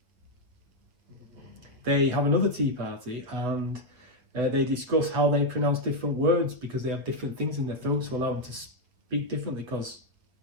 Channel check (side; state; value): left; late; 7.7 ms